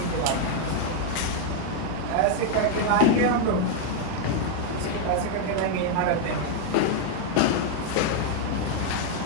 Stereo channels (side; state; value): both; different; correlation 0.00